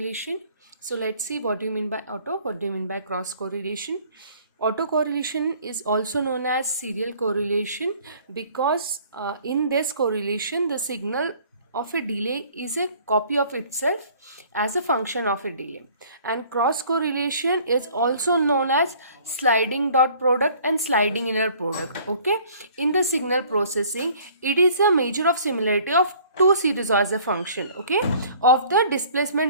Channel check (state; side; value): inverted; both; correlation -0.54